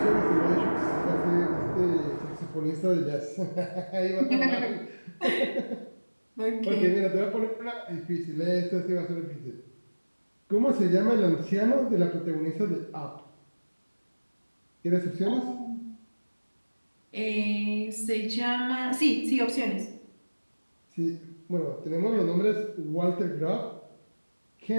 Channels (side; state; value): both; inverted; correlation -1.00